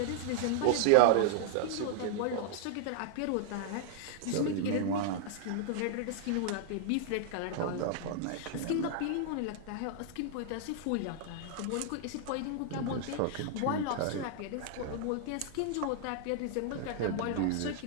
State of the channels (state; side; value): different; both; correlation -0.01